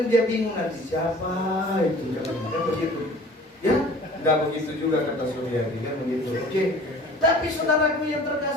dia bingung nanti siapa itu, kan begitu. Ya, nggak begitu juga kata Suryadi, kan begitu. Oke. Tapi saudaraku yang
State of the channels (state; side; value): normal; both; correlation 0.46